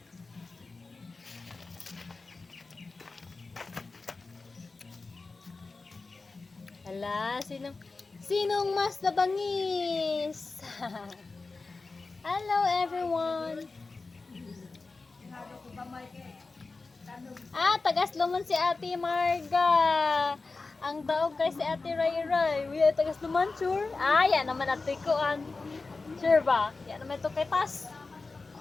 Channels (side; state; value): right; quieter; 3.8 dB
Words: Hala, sinong mas nabangis? Hello everyone. Tagasluman si Ate Marga. Ang daog kay si Ate Ray Ray. Uy, tagasluman sure. Yan naman ate ko an. Sure ba? Yan naman ito kay Tas.